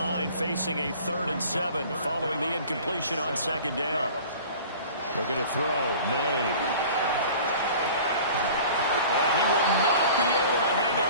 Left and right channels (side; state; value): both; inverted; correlation -0.44